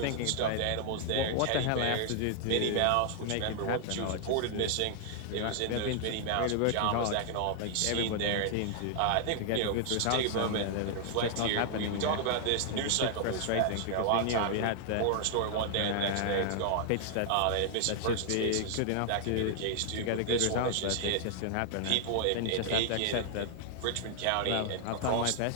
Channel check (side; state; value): both; different; correlation -0.01